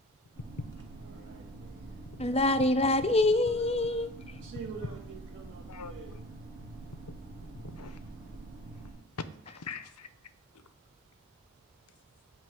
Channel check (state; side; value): normal; both; correlation 0.42